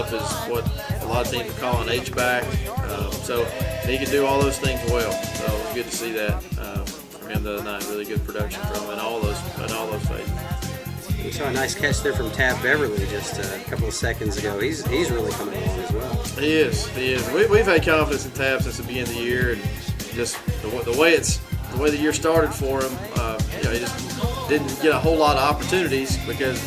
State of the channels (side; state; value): both; identical; correlation 1.00